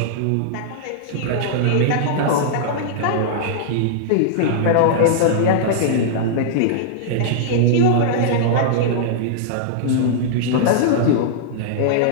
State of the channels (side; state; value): both; different; correlation -0.02